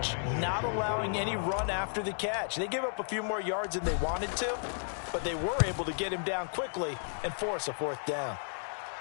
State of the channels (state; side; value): silent; right; digital silence